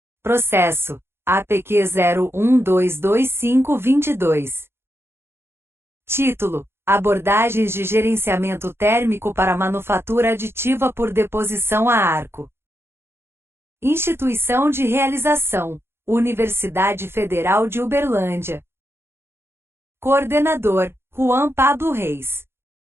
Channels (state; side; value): late; left; 0.12 ms